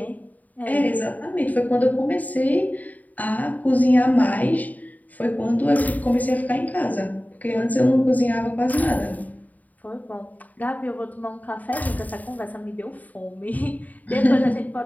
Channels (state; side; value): late; right; 0.077 ms